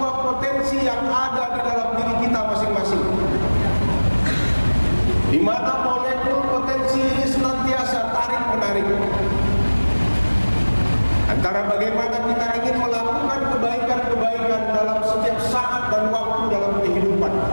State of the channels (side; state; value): both; inverted; correlation -1.00